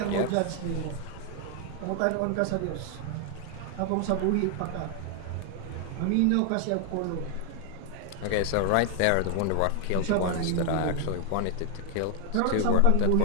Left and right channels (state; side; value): different; both; correlation 0.00